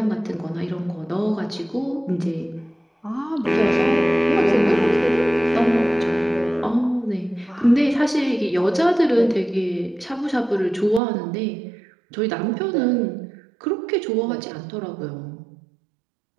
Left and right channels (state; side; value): drops out; left; at 11.0 s